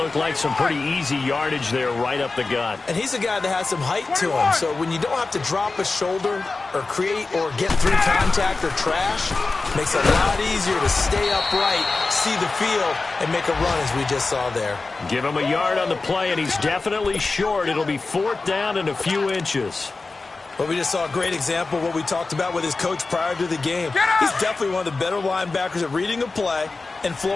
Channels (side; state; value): right; quieter; 3.7 dB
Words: like some pretty easy yardage there right up the gut. And he's a guy that has some height to him, so when you don't have to drop a shoulder or create or get through contact or trash, makes it a lot easier to stay upright, see the field, and make a run as we just saw there. Give him a yard on the play, and he's definitely short. It'll be 4th down and a few inches. But we just saw a great example of what we talked about with his coach prior to the game. He's definitely one of the better linebackers at reading a play and